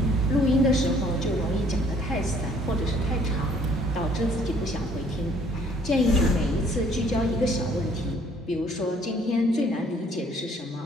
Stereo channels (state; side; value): normal; both; correlation 0.60